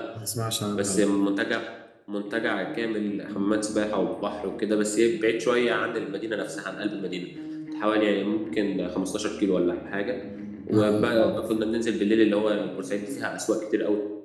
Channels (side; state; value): both; identical; correlation 1.00